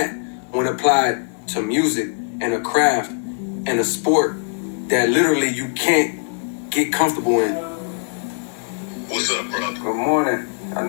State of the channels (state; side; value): silent; right; 65 dB below the other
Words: when applied to music and a craft and a sport that literally you can't get comfortable in. What's up, bro? Good morning. I